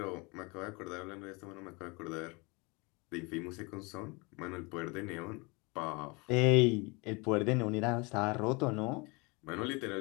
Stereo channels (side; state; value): right; quieter; 28.2 dB